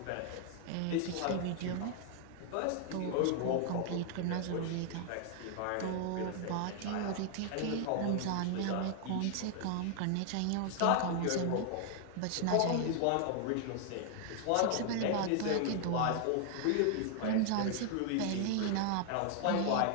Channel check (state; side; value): different; both; correlation 0.00